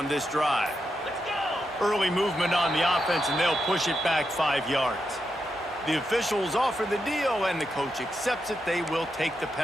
this drive. Let's go. Early movement on the offense, and they'll push it back 5 yards. The officials offer the deal, and the coach accepts it. They will take the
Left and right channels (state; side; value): normal; both; correlation 0.85